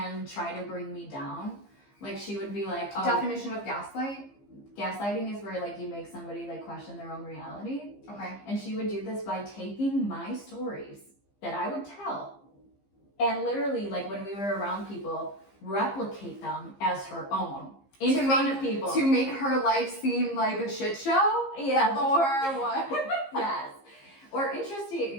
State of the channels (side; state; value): right; late; 15 ms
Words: try to bring me down. Like she would be like, oh, Definition of gaslight? gaslighting is where like you make somebody like question their own reality. Okay. And she would do this by taking my stories that I would tell and literally like when we were around people, replicate them as her own in front of people. To make her life seem like a shit show? Yeah. Or what? Yes. Or